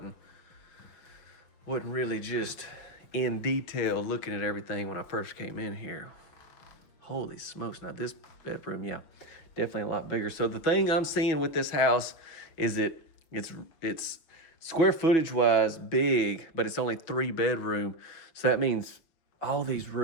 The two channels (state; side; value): late; right; 6.2 ms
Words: really just in detail looking at everything when I first came in here. Holy smokes, now this bedroom, yeah, definitely a lot bigger. So the thing I'm seeing with this house is it's square footage wise big, but it's only 3 bedroom. So that means all these